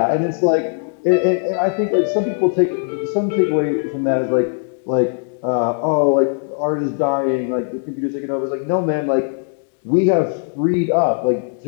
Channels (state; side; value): silent; right; 63 dB below the other